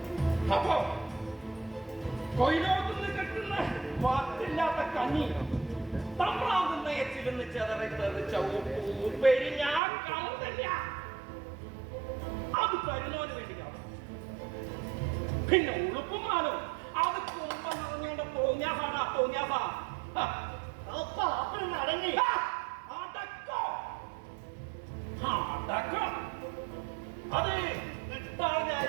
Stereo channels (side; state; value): left; drops out; at 9.8 s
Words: അപ്പോ കൊയിലോത്തുനിന്ന് കിട്ടുന്ന വാത്തില്ലാത്ത കഞ്ഞി തമ്പ്രാകുന്ന എച്ചിരുന്ന് ചെതറി തെറിച്ച ഉപ്പേരി ഞാൻ കാണുന്നില്ല. അത് തരുന്നവന് വേണ്ടി കാണും. പിന്നെ ഉളുപ്പുമാനോ അത് കുമ്പ നിറഞ്ഞോണ്ട് തോന്നിയാസാണ്. തോന്നിയാസാ അപ്പഴൊന്ന് അടങ്ങി. അടക്കം അത് ഇട്ടാൽ